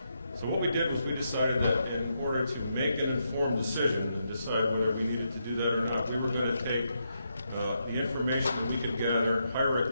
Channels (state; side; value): inverted; both; correlation -0.82